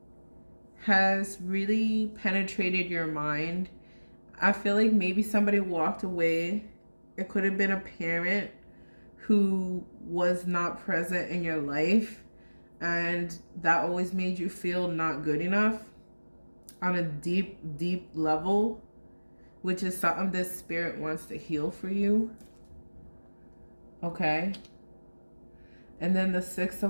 has really penetrated your mind. I feel like maybe somebody walked away. It could have been a parent who was not present in your life, and that always made you feel not good enough on a deep, deep level, which is something this spirit wants to heal for you. Okay. And then the Six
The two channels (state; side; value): inverted; both; correlation -1.00